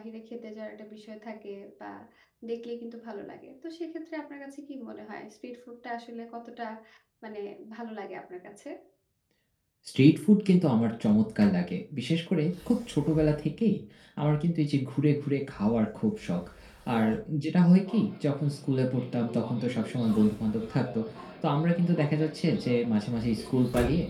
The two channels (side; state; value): both; identical; correlation 1.00